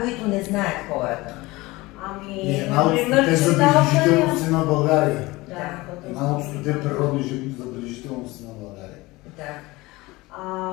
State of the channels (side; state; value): right; quieter; 21.2 dB